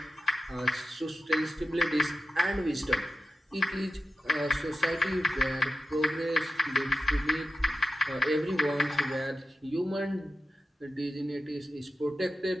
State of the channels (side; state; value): both; normal; correlation 0.90